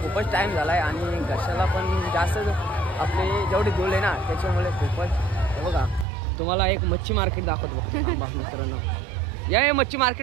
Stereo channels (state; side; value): drops out; left; at 6.1 s